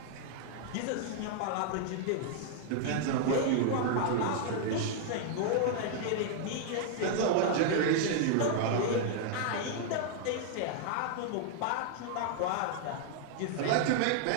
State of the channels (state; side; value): different; both; correlation -0.01